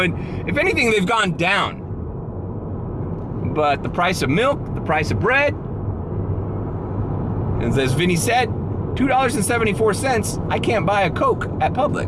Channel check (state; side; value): identical; both; correlation 1.00